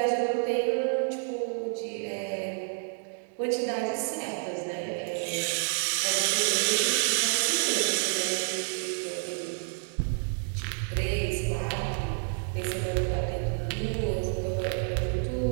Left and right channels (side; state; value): left; silent; 55 dB below the other